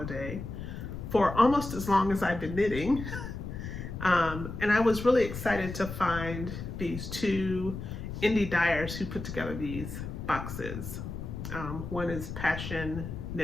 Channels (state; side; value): noise; left; rumble, 7 dB below the sound